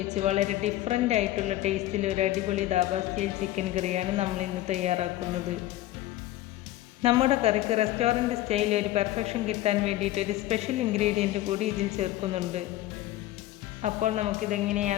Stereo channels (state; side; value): quieter; right; 15.2 dB